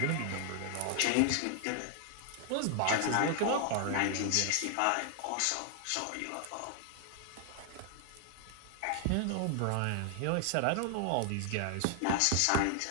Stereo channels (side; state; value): both; different; correlation 0.00